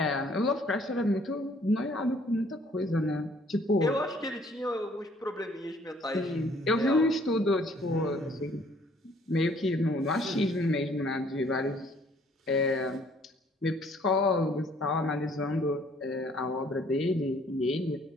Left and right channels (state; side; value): normal; both; correlation 0.60